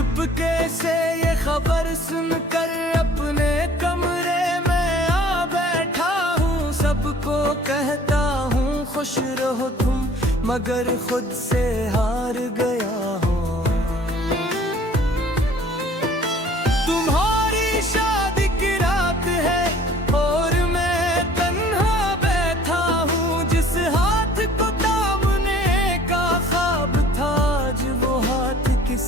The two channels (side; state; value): both; normal; correlation 0.52